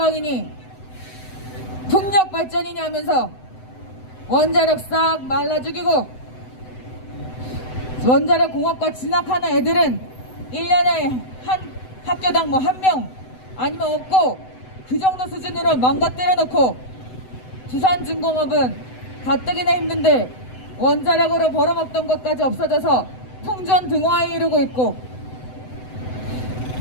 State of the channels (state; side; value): late; right; 7.9 ms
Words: 풍력 발전이니 하면서 원자력 싹 말라 죽이고 원자력 공업과 진학하는 애들은 1년에 한 학교당 뭐 1명 아니면 없고 그 정도 수준으로 망가뜨려 놓고 두산중공업은 가뜩이나 힘든데 원자력으로 벌어먹던 것까지 없어져서 풍전등화에 이르고 있고,